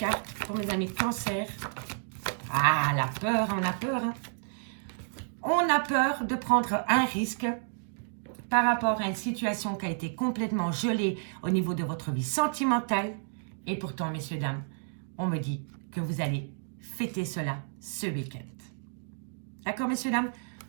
pour mes amis cancer. Ah, la peur, on a peur. Hein. On a peur de prendre un risque par rapport à une situation qui a été complètement gelée au niveau de votre vie sentimentale. Et pourtant, messieurs, dames, on me dit que vous allez fêter cela ce week-end. D'accord, messieurs, dames?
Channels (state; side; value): silent; left; digital silence